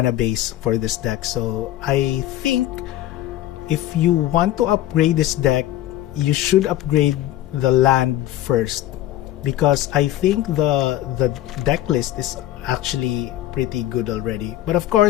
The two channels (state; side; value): quieter; right; 13.8 dB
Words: base for this deck. So I think if you want to upgrade this deck, you should upgrade the land first, because I think the deck list is actually pretty good already. But of